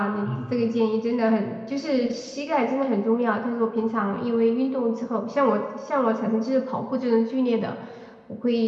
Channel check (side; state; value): both; identical; correlation 1.00